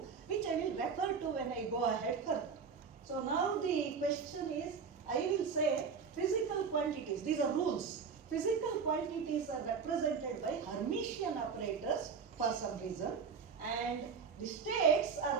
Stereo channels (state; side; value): quieter; left; 5.8 dB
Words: which I will refer to when I go ahead further. So now the question is, I will say physical quantities, these are rules. Physical quantities are represented by Hermitian operators for some reason, and the states